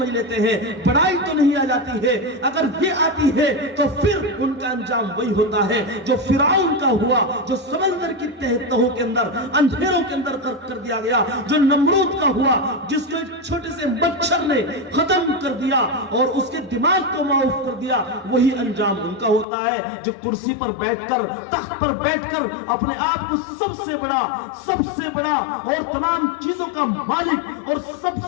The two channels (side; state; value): right; drops out; at 19.5 s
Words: لیتے ہیں، بڑائی تو نہیں آ جاتی ہے۔ اگر یہ آتی ہے تو پھر ان کا انجام وہی ہوتا ہے جو فرعون کا ہوا، جو سمندر کی تہوں کے اندر اندھیروں کے اندر کر دیا گیا، جو نمرود کا ہوا، جس کو چھوٹے سے مچھر نے ختم کر دیا اور اس کے دماغ کو معاف کر دیا، وہی انجام ان کا ہوتا ہے جو کرسی پر بیٹھ کر، تخت پر بیٹھ کر اپنے آپ کو سب سے بڑا اور تمام چیزوں کا مالک اور سب